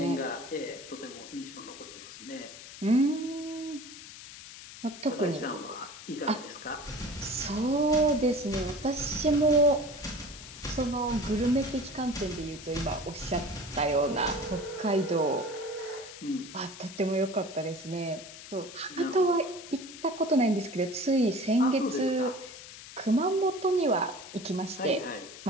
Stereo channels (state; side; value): noise; left; hiss, 14 dB below the sound